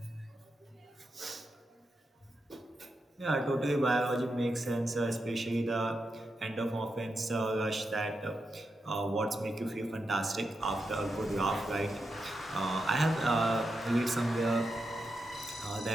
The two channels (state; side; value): normal; both; correlation 0.86